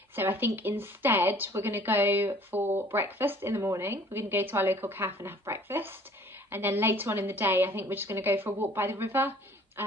So I think instead we're going to go for breakfast in the morning. We're going to go to our local cafe and have breakfast, and then later on in the day I think we're just going to go for a walk by the river,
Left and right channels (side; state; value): both; normal; correlation 0.53